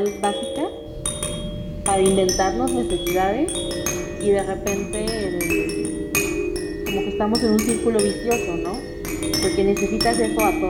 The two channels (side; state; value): both; identical; correlation 1.00